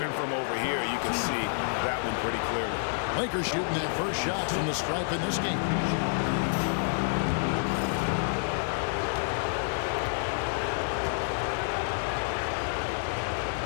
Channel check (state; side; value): silent; right; digital silence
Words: from over here, you can see that one pretty clearly. Lakers shooting their first shot from the stripe in this game.